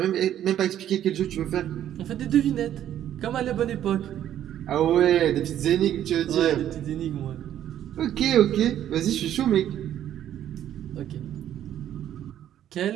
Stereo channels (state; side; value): quieter; left; 11.1 dB